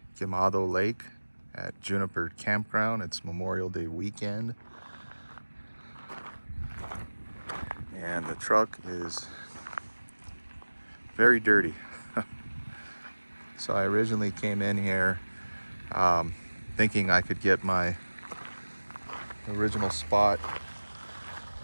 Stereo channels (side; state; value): both; inverted; correlation -1.00